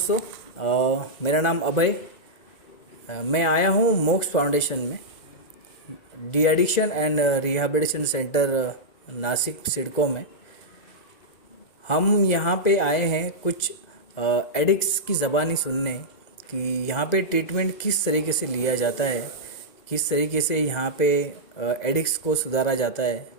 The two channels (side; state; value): right; late; 2.0 ms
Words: मेरा नाम अभय। मैं आया हूँ मोक्स फाउंडेशन में, de addiction and rehabilitation centre Nashik CIDCO में। हम यहाँ पे आए हैं कुछ एडिक्ट्स की ज़बानी सुनने कि यहाँ पे ट्रीटमेंट किस तरीके से लिया जाता है, किस तरीके से यहाँ पे एडिक्ट्स को सुधारा जाता है।